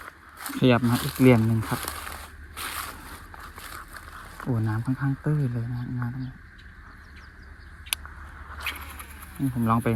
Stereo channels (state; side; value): identical; both; correlation 1.00